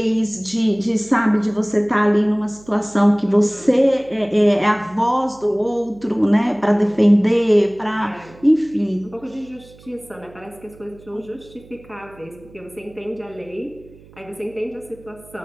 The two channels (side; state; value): right; noise; hum, 24 dB below the sound